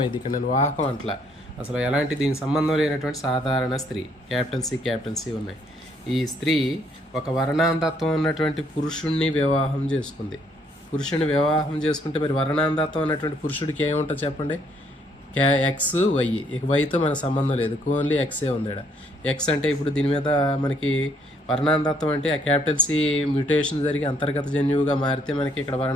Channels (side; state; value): both; normal; correlation 0.68